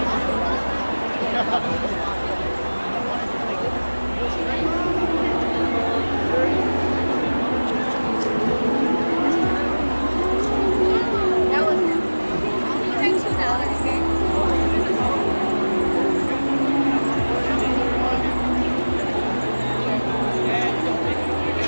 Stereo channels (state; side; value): inverted; both; correlation -1.00